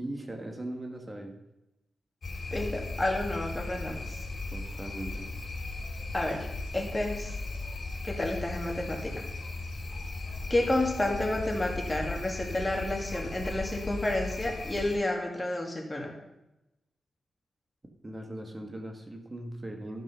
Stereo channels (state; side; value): normal; both; correlation 0.94